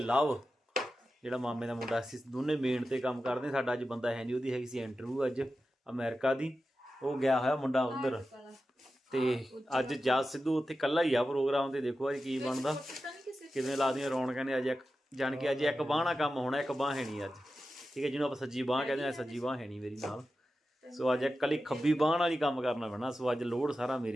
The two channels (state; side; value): normal; both; correlation 0.92